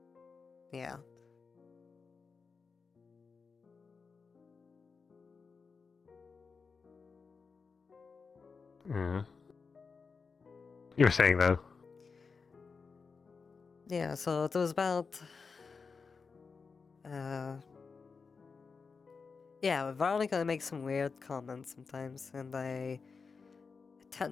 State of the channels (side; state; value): right; quieter; 5.0 dB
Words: Yeah. Yeah. You were saying though. Yeah, so it was about... Yeah, Veronica makes some weird comments sometimes, and I